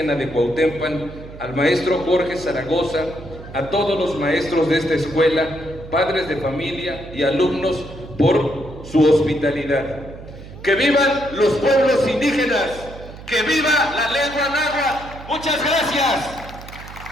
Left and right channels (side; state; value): right; noise; hum, 15 dB below the sound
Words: de Cuauhtémoc, al maestro Jorge Zaragoza, a todos los maestros de esta escuela, padres de familia y alumnos por su hospitalidad. ¡Que vivan los pueblos indígenas! ¡Que viva la lengua náhuatl! ¡Muchas gracias!